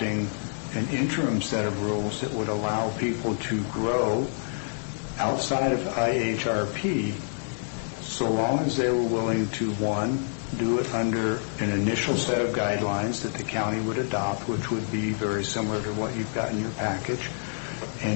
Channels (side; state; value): right; silent; 60 dB below the other